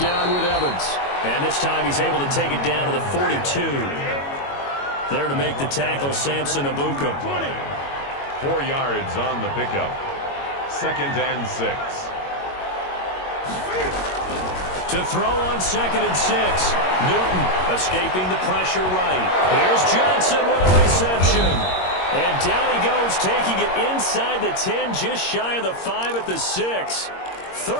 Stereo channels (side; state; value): right; late; 22 ms